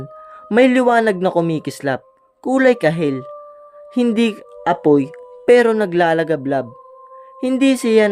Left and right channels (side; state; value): both; identical; correlation 1.00